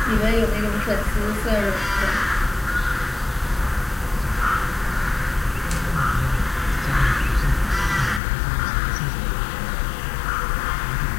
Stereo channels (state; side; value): drops out; right; at 8.2 s